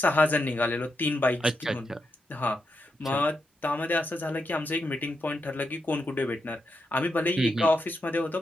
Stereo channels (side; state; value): both; normal; correlation 0.84